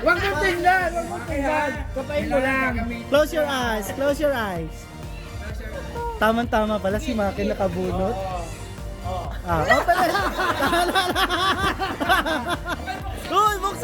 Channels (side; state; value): both; identical; correlation 1.00